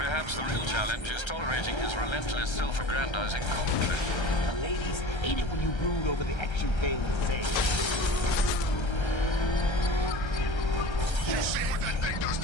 the real challenge is tolerating his relentless, self-aggrandizing commentary. The ladies hate it when you brood over the action failed to say. You see what that thing does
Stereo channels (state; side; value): late; right; 1.3 ms